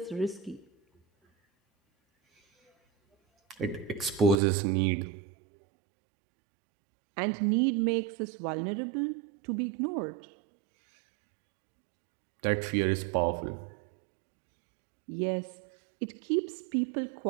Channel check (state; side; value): drops out; left; at 4.4 s